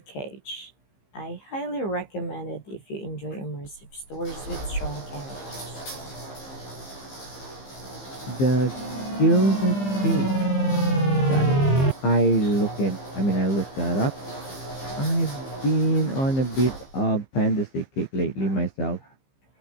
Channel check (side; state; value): right; late; 15 ms